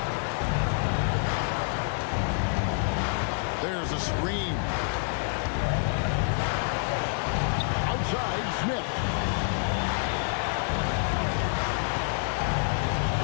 There's a screen. Outside, Smith.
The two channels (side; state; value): right; silent; 58 dB below the other